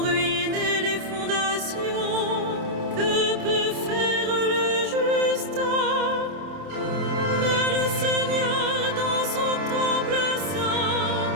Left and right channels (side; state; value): left; late; 27 ms